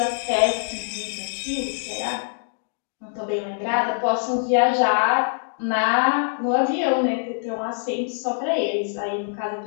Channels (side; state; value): right; silent; digital silence